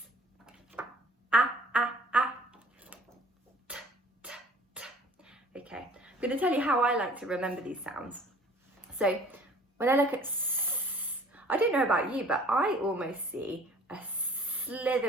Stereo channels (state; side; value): normal; both; correlation 0.51